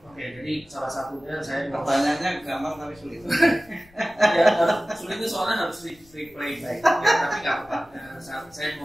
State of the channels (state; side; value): noise; left; rumble, 27 dB below the sound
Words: Oke, jadi salah satunya saya Pertanyaannya gampang tapi sulit. ya, sulit itu soalnya harus replay baik. Ya, tapi nggak apa-apa. Saya